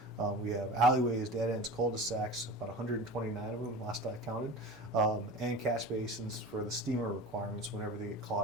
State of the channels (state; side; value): normal; both; correlation 0.33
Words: We have alleyways, dead ends, cul-de-sacs, about 129 of them last I counted, and catch basins for the steamer requirements whenever they get